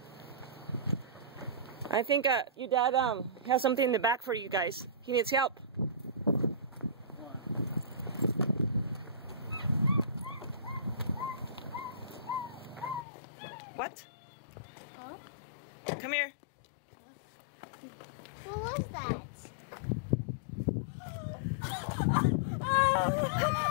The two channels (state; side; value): drops out; right; at 13.1 s